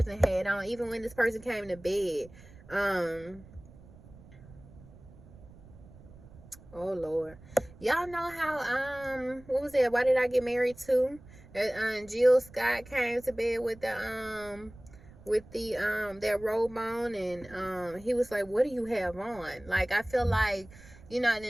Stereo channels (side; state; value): right; noise; rumble, 21 dB below the sound